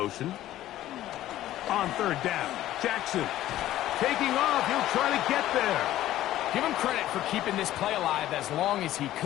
On third down, Jackson. Taking off, he'll try to get there. Give him credit for keeping this play alive as long as he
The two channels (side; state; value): right; quieter; 13.9 dB